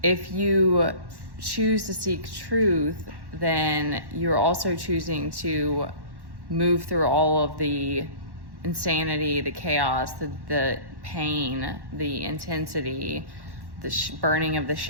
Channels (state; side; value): late; left; 1.1 ms